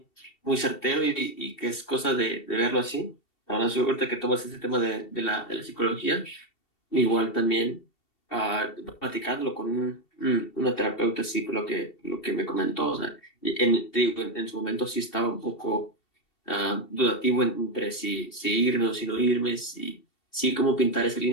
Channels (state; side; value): late; right; 2.7 ms